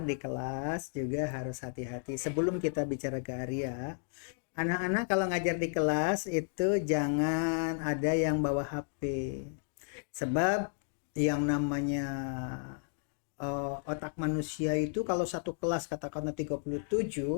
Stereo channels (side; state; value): right; silent; digital silence